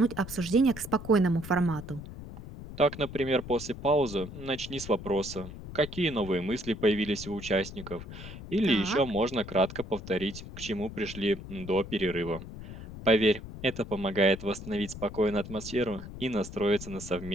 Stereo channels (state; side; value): noise; left; rumble, 12 dB below the sound